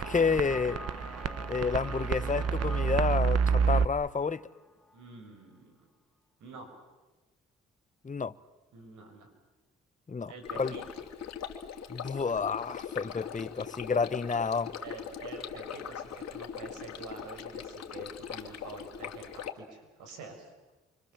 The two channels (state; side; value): normal; both; correlation 0.50